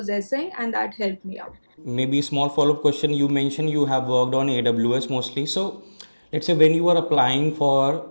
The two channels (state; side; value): inverted; both; correlation -1.00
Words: and that helped me out. Maybe a small follow-up question. You mentioned you have worked on AWS mostly. So let's say when you are applying for